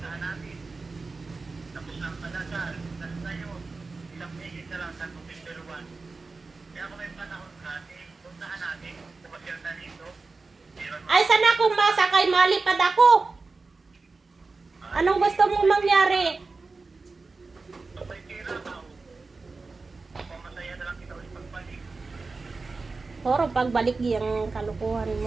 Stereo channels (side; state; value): left; quieter; 3.9 dB